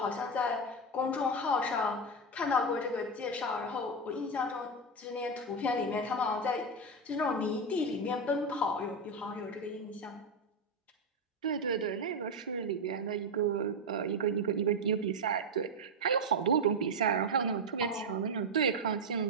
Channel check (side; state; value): both; normal; correlation 0.08